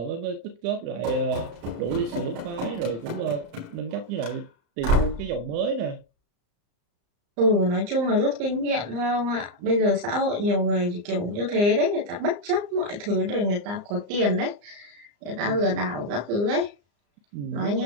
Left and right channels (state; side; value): late; left; 34 ms